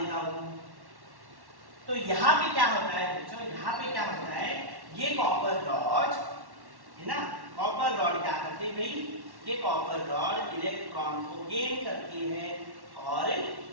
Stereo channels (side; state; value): left; late; 1.1 ms